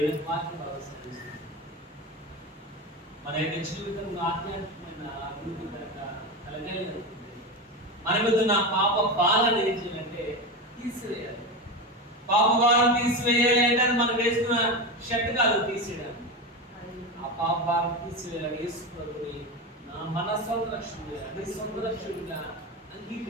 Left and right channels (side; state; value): both; normal; correlation 0.20